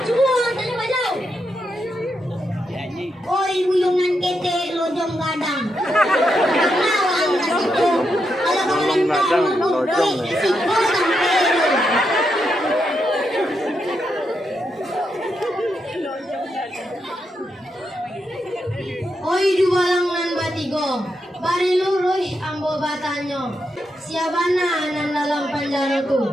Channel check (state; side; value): normal; both; correlation 0.83